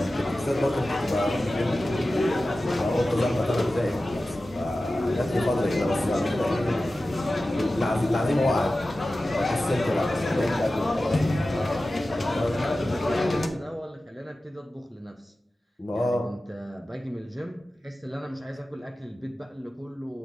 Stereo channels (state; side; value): normal; both; correlation 0.95